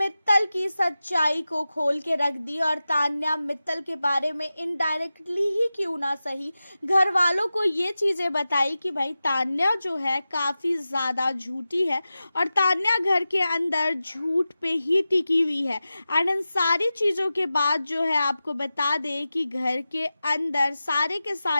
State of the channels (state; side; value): inverted; both; correlation -0.94